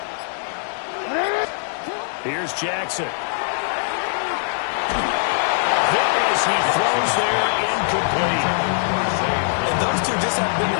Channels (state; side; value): silent; right; 64 dB below the other